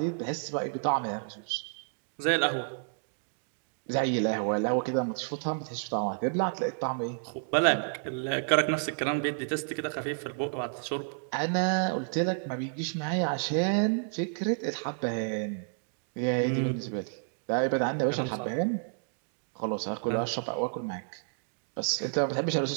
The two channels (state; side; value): silent; left; digital silence